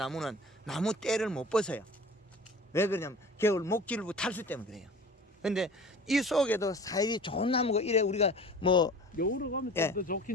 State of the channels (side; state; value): both; normal; correlation 0.41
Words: 나무 때를 못 벗어요. 왜 그러냐면 겨울 목질부 탈수 때문에 그래요. 근데 이 속에도 사이이 좋은 나무가 이래 우리가 뭐 여우로 가면 예. 더